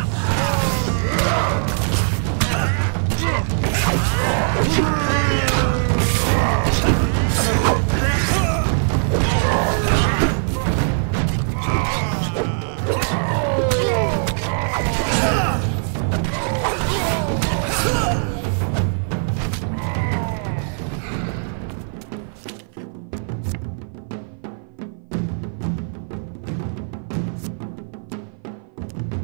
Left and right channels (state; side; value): silent; left; 56 dB below the other